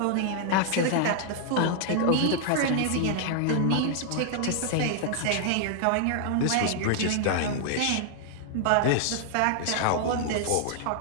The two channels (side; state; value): both; different; correlation 0.00